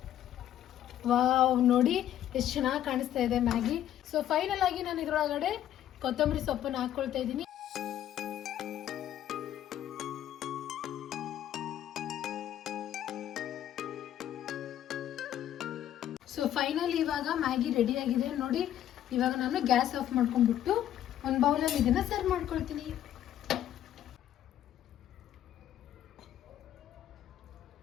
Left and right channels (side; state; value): right; quieter; 11.5 dB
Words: ವಾವ್, ನೋಡಿ ಎಷ್ಟು ಚೆನ್ನಾಗಿ ಕಾಣಿಸ್ತಾ ಇದೆ ಮ್ಯಾಗಿ. ಸೊ ಫೈನಲ್ ಆಗಿ ನಾನು ಇದರೊಳಗಡೆ ಕೊತ್ತಂಬರಿ ಸೊಪ್ಪನ್ನು ಹಾಕೊಳ್ತಾ ಇದ್ದೀನಿ. ಸೊ ಫೈನಲ್ ಇವಾಗ ಮ್ಯಾಗಿ ರೆಡಿ ಆಗಿದೆ ನೋಡಿ. ಇವಾಗ ನಾನು ಗ್ಯಾಸ್ ಆಫ್ ಮಾಡ್ಕೊಂಡ್ಬಿಟ್ಟು ಒಂದು ಬೌಲಲ್ಲಿ ಇದನ್ನ ಸರ್ವ್ ಮಾಡ್ಕೊಳ್ತೀನಿ.